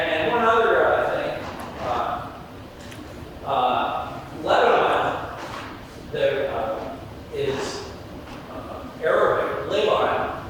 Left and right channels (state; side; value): identical; both; correlation 1.00